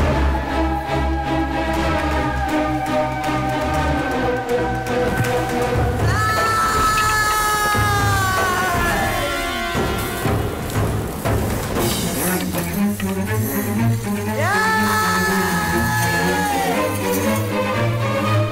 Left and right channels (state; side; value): identical; both; correlation 1.00